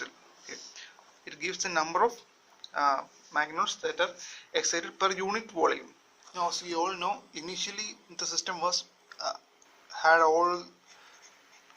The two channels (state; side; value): identical; both; correlation 1.00